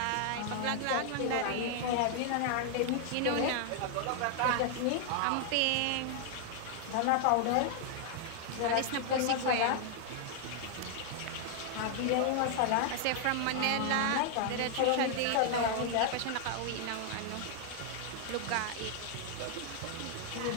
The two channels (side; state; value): both; different; correlation 0.00